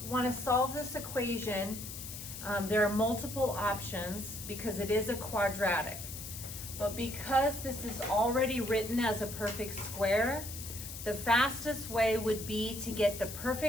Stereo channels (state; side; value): noise; left; hiss, 9 dB below the sound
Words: want to solve this equation, there are multiple options because it is a quadratic. But because this is already written as a perfect square, the fastest way would be to get the